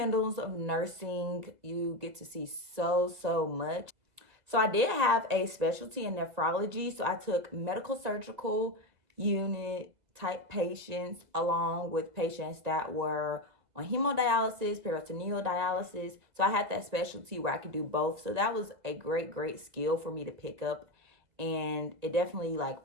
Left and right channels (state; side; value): late; left; 2.2 ms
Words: of nursing. You get to see so much. So I did have a specialty in nephrology. So I took medical surgical unit type patients along with patients that were on hemodialysis, peritoneal dialysis. So I had that specialty where I could do both. So that was a great skill for me to pick up. And it definitely like